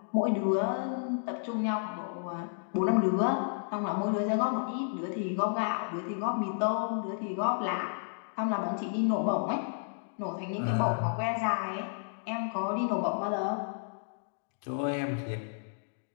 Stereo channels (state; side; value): silent; right; digital silence